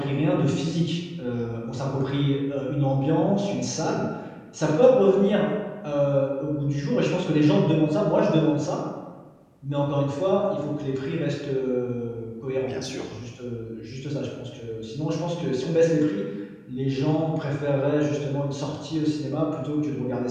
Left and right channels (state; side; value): identical; both; correlation 1.00